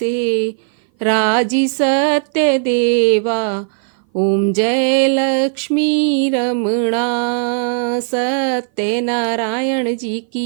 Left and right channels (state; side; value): silent; left; 58 dB below the other